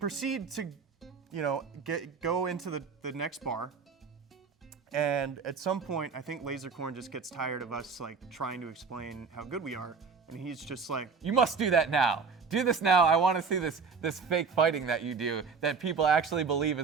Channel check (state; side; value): quieter; left; 5.4 dB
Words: to, go into the next bar. And at some point, I think Lasercorn just gets tired of us like trying to explain how good we are. And he's just like, You must do that now. Do this now. I want to see this fake fighting that you do that people actually believe